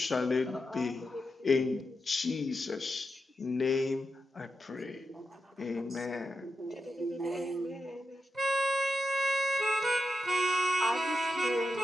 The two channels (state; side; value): normal; both; correlation 0.87